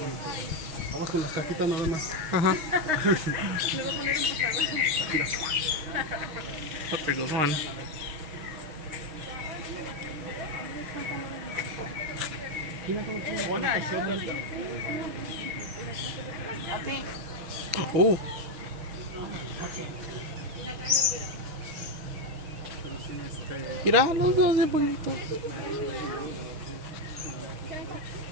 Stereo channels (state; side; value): late; left; 6.4 ms